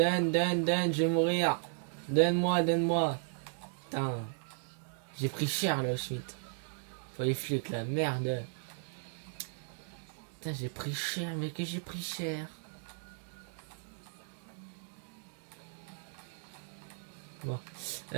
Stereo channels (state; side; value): silent; left; digital silence